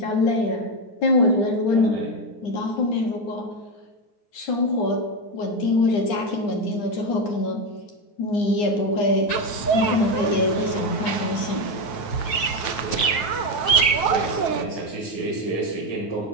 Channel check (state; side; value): late; right; 9.1 ms